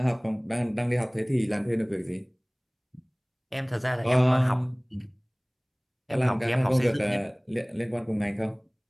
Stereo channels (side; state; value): both; identical; correlation 1.00